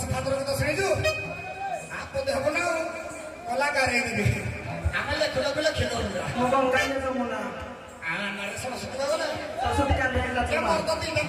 ଠାକୁର ଗୀତ ଶୁଣିଛୁ ଆପଦ ହବ ନା କଳାକାର ହେଇଯିବେ ଆମେ ଲେଖିଲ ଲେଖିଲ ମୁଁ ଗଙ୍ଗାଇଲେ ଯମୁନା ସରସ୍ୱତୀ ଗଲେ ସରସ୍ୱତୀ କାଲି ହେଲା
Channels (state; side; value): identical; both; correlation 1.00